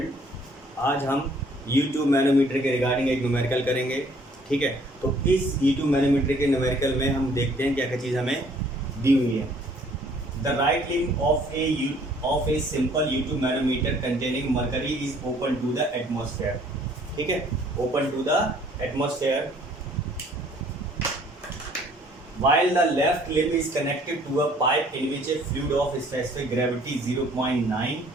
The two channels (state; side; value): normal; both; correlation 0.59